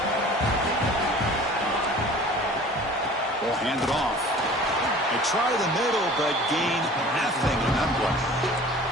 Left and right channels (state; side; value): normal; both; correlation 0.45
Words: We'll hand it off. They try the middle, but gain nothing in that play.